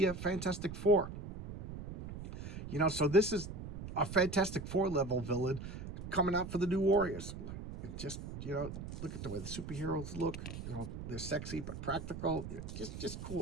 Fantastic Four. So this is a Fantastic Four level villain coming out for the New Warriors. Just look at the way the superheroes look. They're sexy but practical. Just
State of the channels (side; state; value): right; noise; rumble, 9 dB below the sound